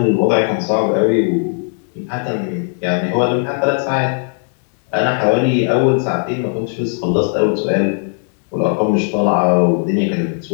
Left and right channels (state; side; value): silent; right; 56 dB below the other